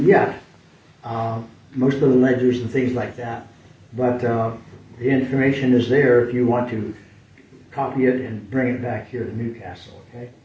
yet. Most of the ledgers and things like that. But the information is there if you want to copy it and bring it back here to Newcastle, okay?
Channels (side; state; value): both; identical; correlation 1.00